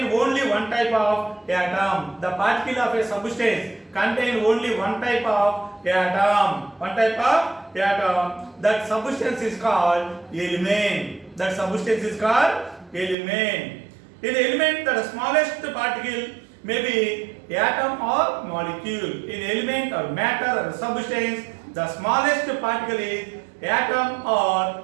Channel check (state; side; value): drops out; left; at 13.2 s